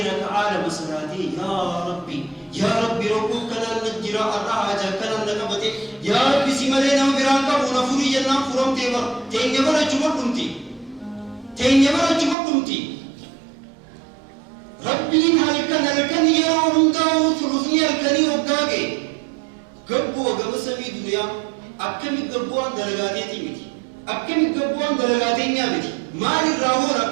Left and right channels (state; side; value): drops out; left; at 12.4 s